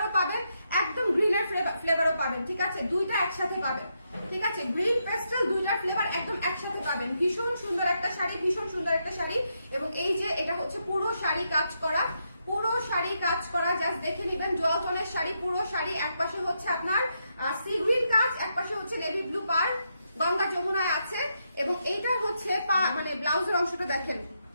পাবেন, একদম গ্রিনের ফ্লেভারও পাবেন, ঠিক আছে? দুইটা একসাথে পাবেন, ঠিক আছে? গ্রিন পেস্টাল দুইটার ফ্লেভার একদম একসাথে পাবেন। ভীষণ সুন্দর একটা শাড়ি, এবং এই যে এটা হচ্ছে পুরো শাড়ি কাজ করা, জাস্ট দেখে নেবেন। ডুয়ালটনের শাড়ি, পুরো শাড়ি, এক পাশে হচ্ছে আপনার সি গ্রিন কাজ, এক পাশে হচ্ছে নেভি ব্লু পার, গঙ্গা যমুনায় আছে। এবং এইটা হচ্ছে মানে ব্লাউজের অংশটা দেখেন,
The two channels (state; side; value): inverted; both; correlation -0.81